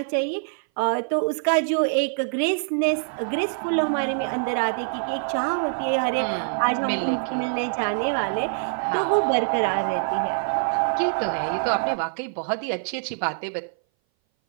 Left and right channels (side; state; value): left; silent; 59 dB below the other